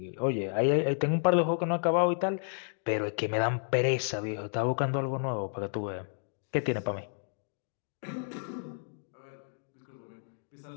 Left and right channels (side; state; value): right; silent; digital silence